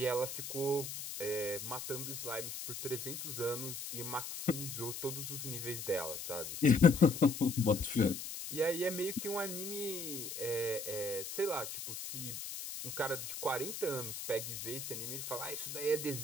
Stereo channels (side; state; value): left; noise; hiss, 7 dB below the sound